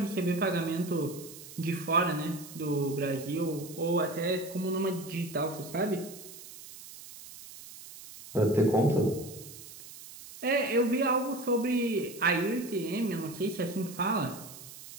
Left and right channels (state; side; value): noise; right; hiss, 15 dB below the sound